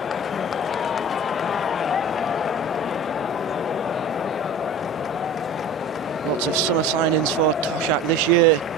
Lots of summer signings for Toshak this year.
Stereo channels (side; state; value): both; normal; correlation 0.37